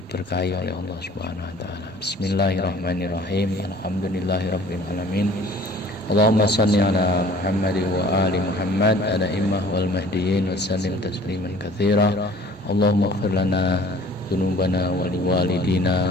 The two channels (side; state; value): both; normal; correlation 0.50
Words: oleh Allah Subhanahu wa ta'ala. Bismillahirrahmanirrahim. Alhamdulillahirabbil alamin. Allahumma shalli ala Muhammad wa ali Muhammad ada'immah wal mahdiyyin wa sallim tasliman katsira. Allahumma ighfir lana dzunubana wa